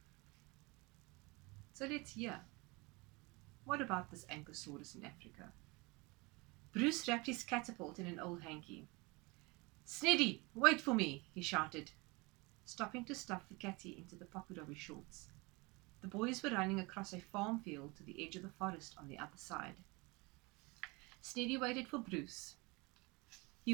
So let's hear. What about this Ankisaurus in Africa? Bruce wrapped his catapult in an old hanky. Sneddy, wait for me, he shouted, stopping to stuff the catty into the pocket of his shorts. The boys were running across a farm field to the edge of the forest on the other side. Sneddy waited for Bruce.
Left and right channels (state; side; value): quieter; left; 26.3 dB